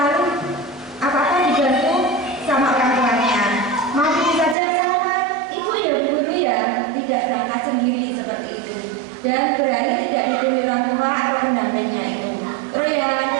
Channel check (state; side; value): drops out; left; at 4.5 s